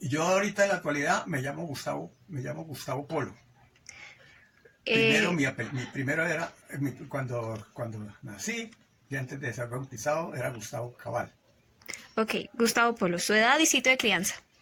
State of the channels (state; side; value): identical; both; correlation 1.00